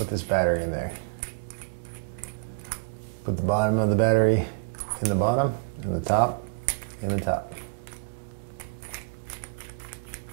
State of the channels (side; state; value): left; quieter; 34.0 dB